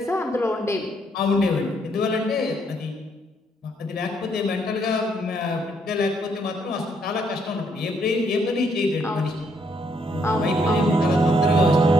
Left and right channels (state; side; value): normal; both; correlation 0.71